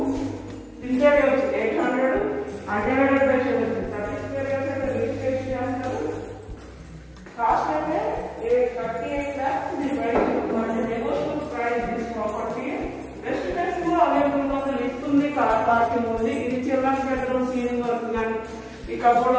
interior వచ్చి 800 అన్డివైడెడ్ బై 30 స్క్వేర్ యార్డ్స్ అయితే రిజిస్ట్రేషన్ చేస్తారు. కాస్ట్ అయితే 38 lakhs. ఇది బయట negotiable price. This property best price లో అవైలబుల్ గా లిఫ్ట్ ఉంది, కార్ పార్కింగ్ ఉంది. ఇది చిల్డ్రన్స్ బెడ్రూమ్, సీలింగ్ వర్క్ కానీ ఈ కబోర్డ్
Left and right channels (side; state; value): both; identical; correlation 1.00